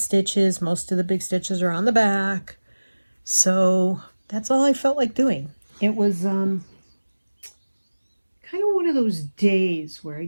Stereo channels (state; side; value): inverted; both; correlation -1.00